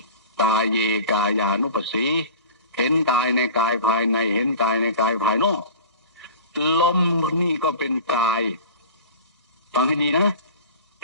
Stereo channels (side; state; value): both; inverted; correlation -0.39